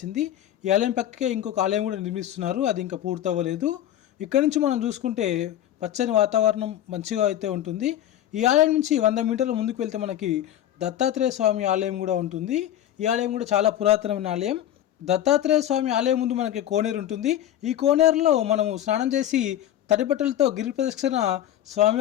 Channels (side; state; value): right; quieter; 11.7 dB